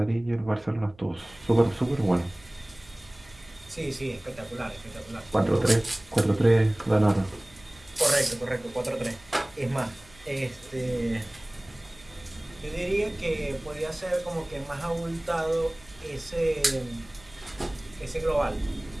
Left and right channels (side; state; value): right; noise; hum, 25 dB below the sound